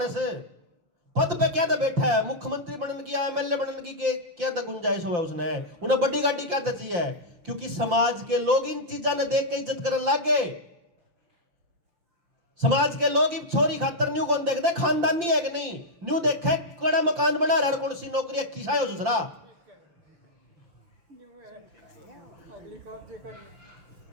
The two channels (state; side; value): late; left; 5.8 ms